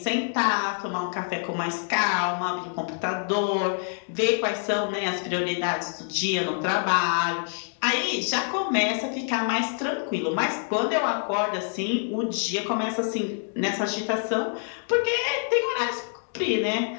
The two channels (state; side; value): silent; right; digital silence